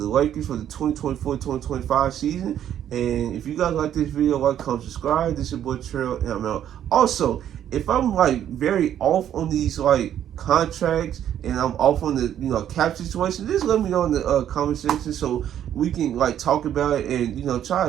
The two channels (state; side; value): quieter; left; 10.4 dB